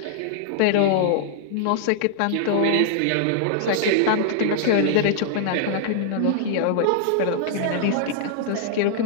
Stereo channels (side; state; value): both; different; correlation -0.01